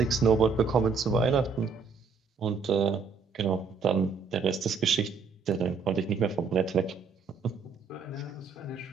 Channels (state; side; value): quieter; left; 5.3 dB